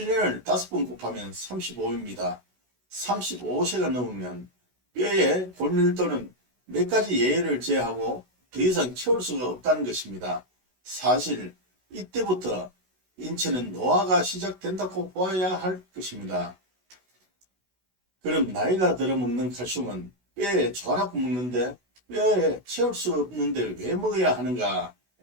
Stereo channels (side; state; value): left; late; 16 ms